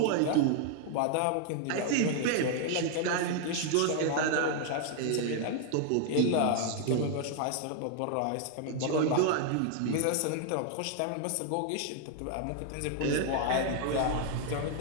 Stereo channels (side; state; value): both; different; correlation 0.00